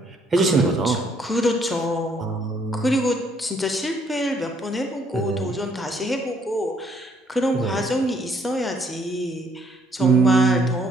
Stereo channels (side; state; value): both; normal; correlation 0.66